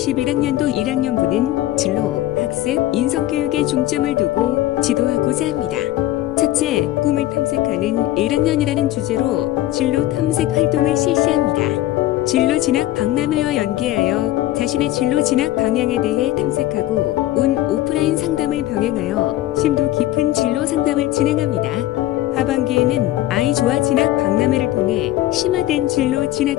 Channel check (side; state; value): right; quieter; 15.1 dB